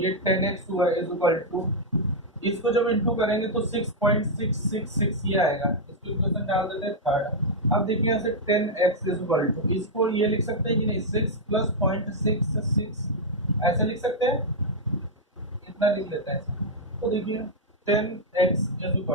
10x हुआ इज इक्वल टू, इसको जब इंटू करेंगे तो 6.666 ये आएगा। इसको इक्वेशन डाल देते हैं थर्ड। अब देखिए यहाँ से 10x इज इक्वल टू, इसको ये लिख सकते हैं कि नहीं, 6 प्लस 0.66 ऐसे लिख सकते हैं, इतना लिख लेते हैं। तो देखिए 10x is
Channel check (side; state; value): both; normal; correlation -0.03